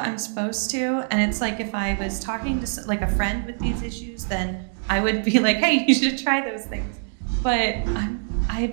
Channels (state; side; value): silent; left; digital silence